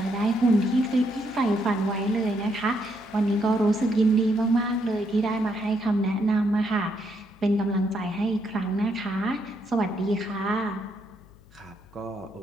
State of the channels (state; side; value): noise; left; hum, 25 dB below the sound